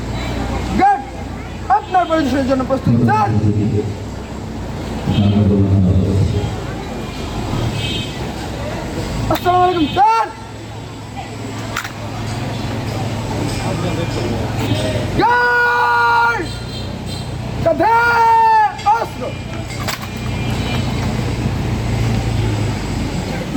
Good, আপনার পরিদর্শনের জন্য প্রস্তুত স্যার। আসসালামু আলাইকুম স্যার। গার্ড, কাঁধে অস্ত্র।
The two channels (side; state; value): both; identical; correlation 1.00